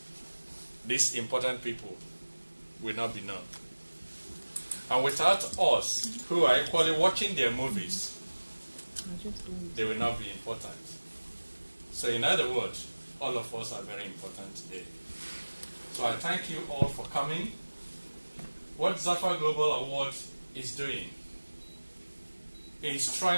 these important people will not be known. And without us, who are equally watching their movies, they will not be important. So in other words, all of us are very important today. So I thank you all for coming. What ZAFAA Global Award is doing is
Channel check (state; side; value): inverted; both; correlation -1.00